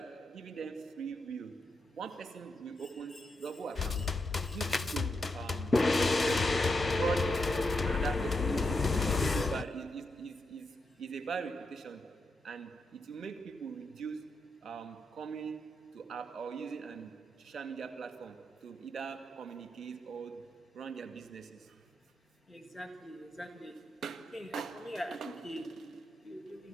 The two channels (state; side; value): normal; both; correlation 0.84